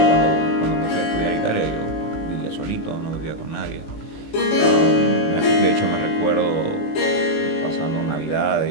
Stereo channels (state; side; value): late; right; 19 ms